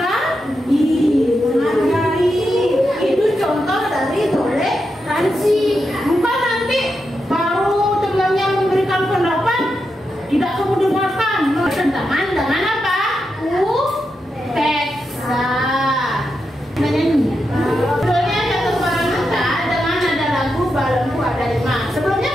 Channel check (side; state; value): both; normal; correlation 0.86